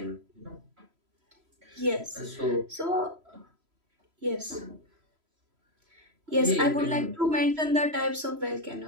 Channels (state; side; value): late; left; 3.0 ms